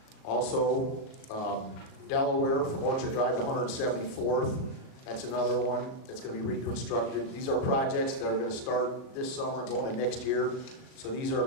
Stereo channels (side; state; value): right; late; 37 ms